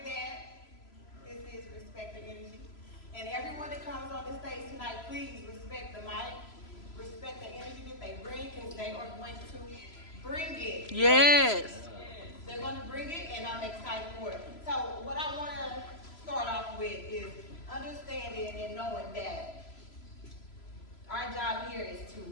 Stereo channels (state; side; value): late; right; 3.0 ms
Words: this is Respect the Energy. And everyone that comes on the stage tonight, please respect the mic. Respect the energy that they bring, because they are going to bring it. Yes. They're going to bring it, and I'm excited for it. So what I want to start off with is understanding and knowing that our job here is to